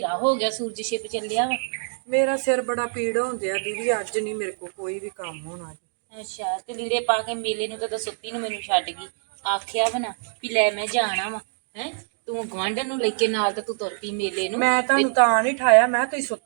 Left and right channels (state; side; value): silent; left; 62 dB below the other